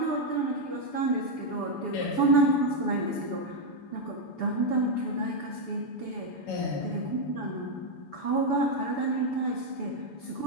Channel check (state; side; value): late; right; 7.0 ms